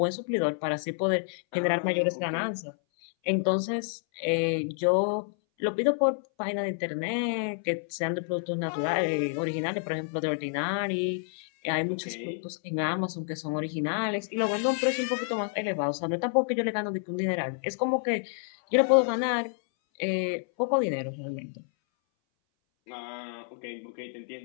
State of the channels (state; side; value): silent; right; 59 dB below the other